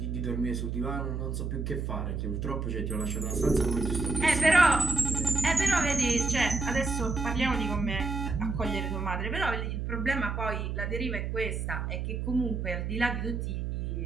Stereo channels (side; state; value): right; noise; hum, 2 dB below the sound